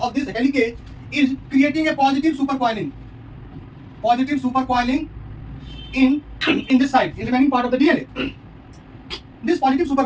this helicase is creating a positive supercoiling. Positive supercoiling in this side, in the remaining part of the DNA. This positive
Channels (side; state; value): both; identical; correlation 1.00